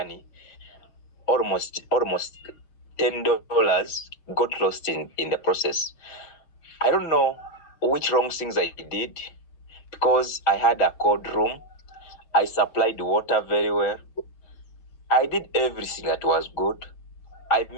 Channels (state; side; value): late; right; 6.3 ms